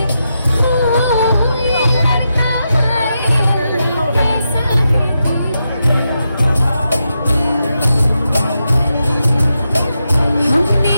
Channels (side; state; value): both; inverted; correlation -0.86